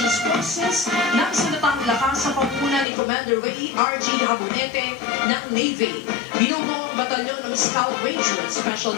Forces ng Sandatang Lakas sa pamumuno ni Commander Ray R.G. Habonete ng Navy. Binubuo ang batalyon ng Scout Ranger Special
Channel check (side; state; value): right; drops out; at 2.9 s